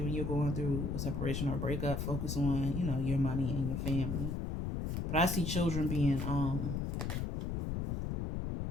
when you're going through a separation or a breakup, focus on, your money and your family. But I see children being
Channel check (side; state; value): left; noise; rumble, 2 dB below the sound